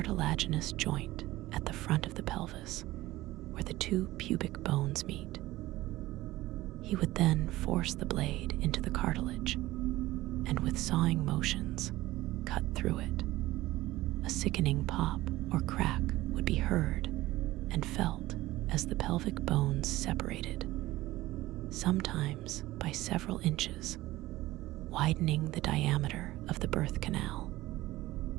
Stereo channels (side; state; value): left; quieter; 17.4 dB